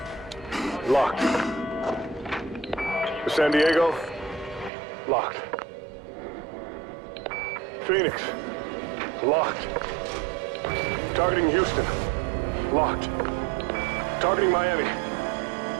Locked. San Diego. Locked. Phoenix. Locked. Targeting Houston. Locked. Targeting Miami.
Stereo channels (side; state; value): left; drops out; at 4.7 s